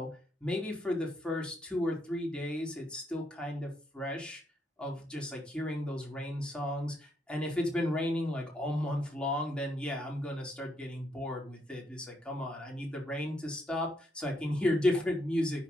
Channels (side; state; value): both; normal; correlation 0.76